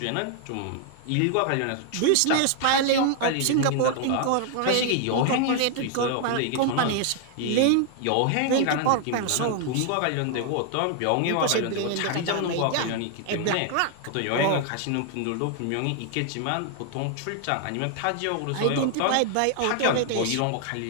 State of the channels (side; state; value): both; different; correlation 0.00